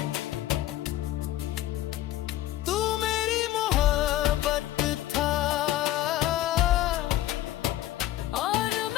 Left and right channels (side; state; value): right; quieter; 14.5 dB